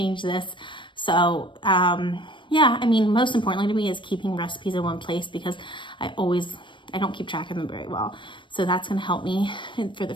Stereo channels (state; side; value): late; right; 0.24 ms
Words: this. So, yeah, I mean, most importantly to me is keeping recipes in one place, because I don't keep track of them very well. So that's going to help me for the